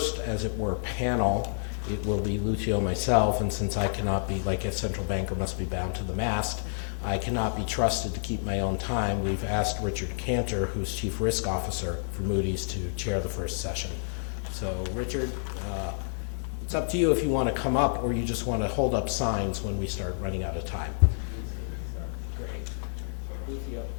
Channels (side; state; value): right; silent; digital silence